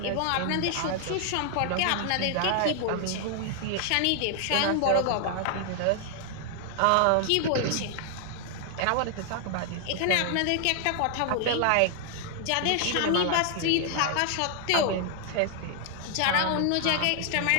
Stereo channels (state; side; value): different; both; correlation 0.00